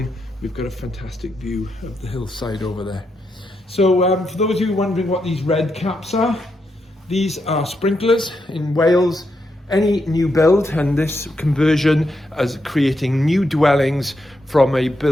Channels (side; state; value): both; normal; correlation 0.82